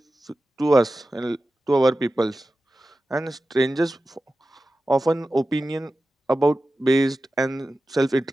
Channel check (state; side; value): normal; both; correlation 0.94